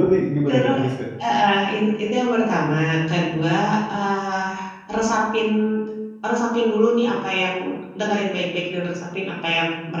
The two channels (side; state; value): both; identical; correlation 1.00